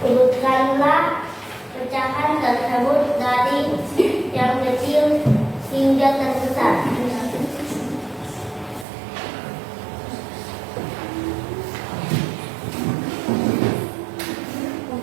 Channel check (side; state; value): left; drops out; at 8.8 s